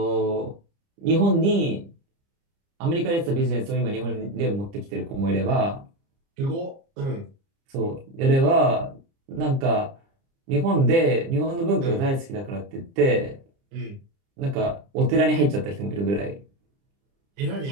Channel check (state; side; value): late; left; 30 ms